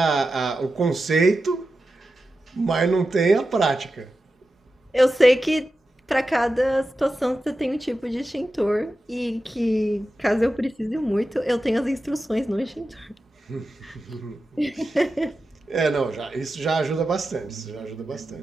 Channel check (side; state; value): both; normal; correlation 0.92